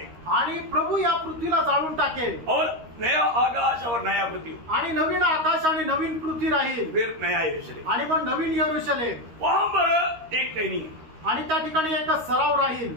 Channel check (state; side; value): late; left; 13 ms